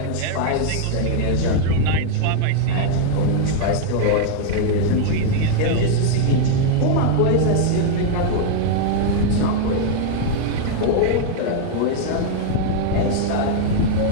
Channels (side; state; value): both; different; correlation -0.01